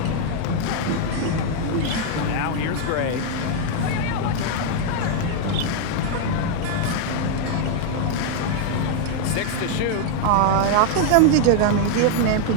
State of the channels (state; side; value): different; both; correlation 0.00